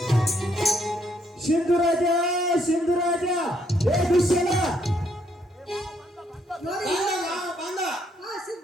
ಸಿಂಧುರಾಜ ಸಿಂಧುರಾಜ ಏ ದುಶ್ಯಲ ನೋಡಿ ಬಂದ ಮಾವ ಬಂದ ಹಾ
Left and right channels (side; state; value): both; normal; correlation 0.71